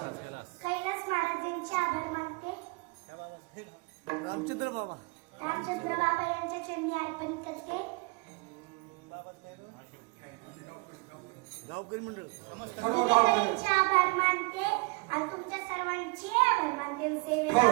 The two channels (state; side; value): quieter; left; 29.4 dB